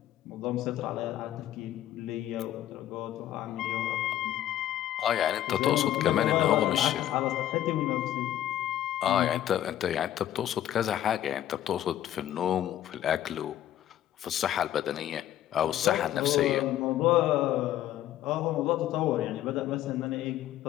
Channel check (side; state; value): right; quieter; 12.4 dB